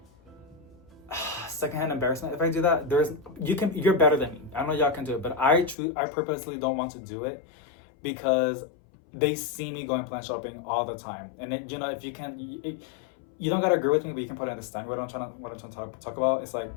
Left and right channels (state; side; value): drops out; right; at 5.8 s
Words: secondhand embarrassment if I do that. You're better than me. I know y'all can do it, but I purposely don't want to do it because they see me going plant shopping all the time. And it, if you can, you don't gotta agree with me, but you can probably understand what I'm trying to talk about. It's like,